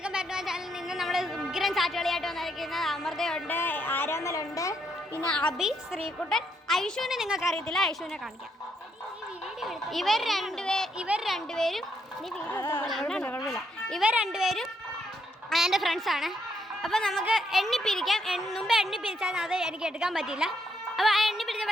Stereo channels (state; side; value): normal; both; correlation 0.75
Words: Back to my channel. നിന്ന് നമ്മൾ ഉഗ്രൻ സാറ്റുകളിയായിട്ട് വന്നിരിക്കുന്നത് അമൃതയുണ്ട്, ആരാമലുണ്ട്, പിന്നെ അബി, ശ്രീകുട്ടൻ, ഐഷുവിനെ നിങ്ങൾക്ക് അറിയത്തില്ല, ഐഷുവിനെ കാണിക്കാം. ഇവർ രണ്ടുപേരും എൻ്റെ ഫ്രണ്ട്സാണ്. അപ്പോൾ നമുക്ക് എണ്ണിപ്പിരിക്കാം. മുമ്പ് എണ്ണിപ്പിരിച്ചാൽ അത് എനിക്ക് എടുക്കാൻ പറ്റില്ല. അപ്പോൾ ആ